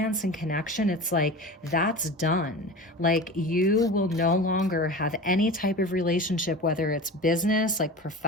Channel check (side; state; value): both; normal; correlation 0.32